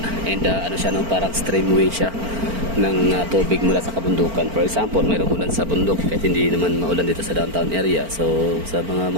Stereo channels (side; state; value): left; late; 4.4 ms